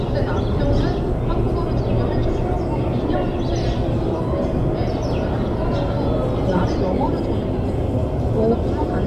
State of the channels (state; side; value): identical; both; correlation 1.00